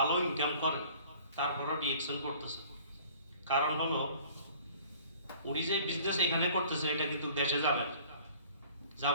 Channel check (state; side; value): inverted; both; correlation -0.51